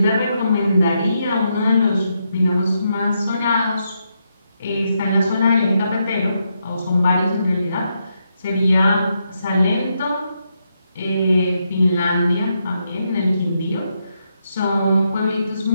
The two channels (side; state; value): both; inverted; correlation -0.81